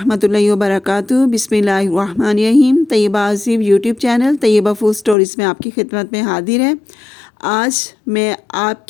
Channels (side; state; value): right; drops out; at 5.2 s